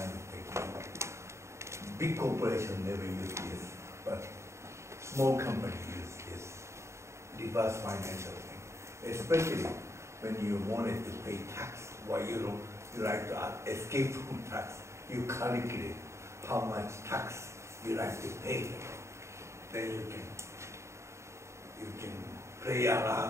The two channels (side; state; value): left; late; 0.14 ms